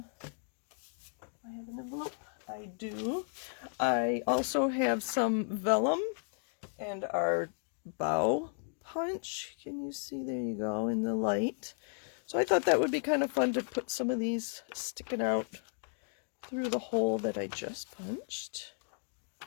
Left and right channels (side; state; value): right; silent; 55 dB below the other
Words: have an envelope. I do. I also have some vellum and our bow punch. Can you see? There you go in the light. So I thought that would be kind of fun to put some of these sticking out through the hole that I just punched.